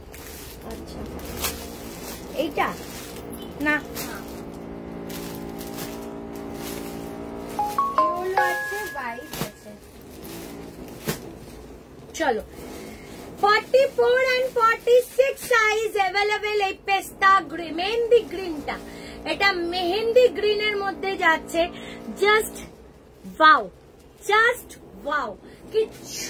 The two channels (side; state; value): both; identical; correlation 1.00